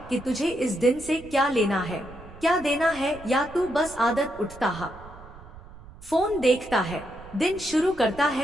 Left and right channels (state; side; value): noise; right; rumble, 18 dB below the sound